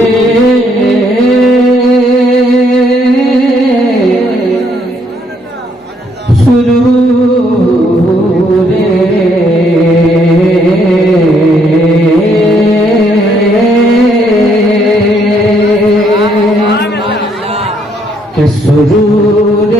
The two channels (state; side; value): normal; both; correlation 0.70